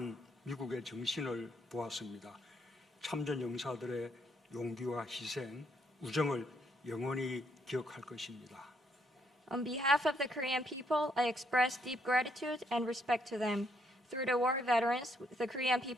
미국의 정신을 보았습니다. 참전 용사들의 용기와 희생, 우정을 영원히 기억할 것입니다. On behalf of the Korean people, I express deep gratitude and respect to them. Through the war veterans, the Korean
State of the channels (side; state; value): both; normal; correlation 0.72